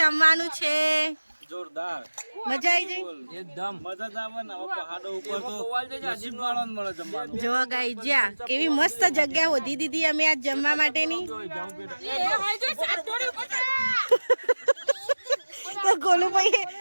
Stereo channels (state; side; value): inverted; both; correlation -1.00